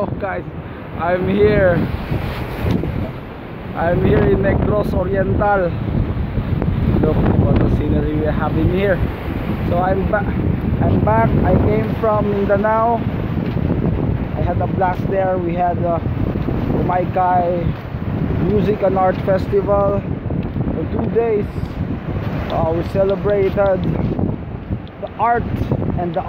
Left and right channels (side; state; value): both; identical; correlation 1.00